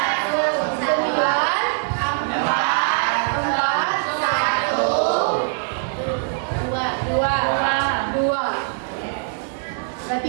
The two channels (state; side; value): silent; left; digital silence